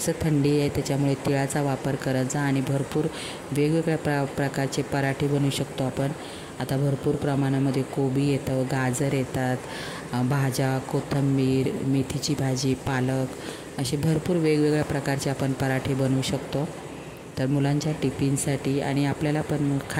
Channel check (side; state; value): both; identical; correlation 1.00